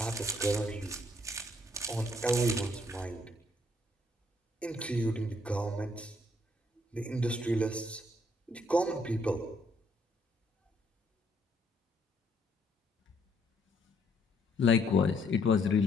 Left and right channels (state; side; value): normal; both; correlation 0.69